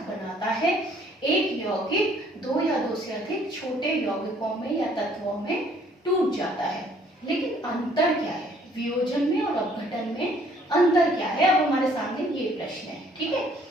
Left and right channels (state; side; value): normal; both; correlation 0.61